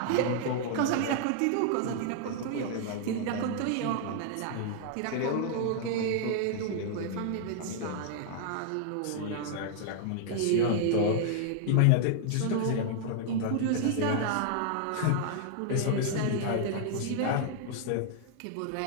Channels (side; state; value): both; different; correlation -0.01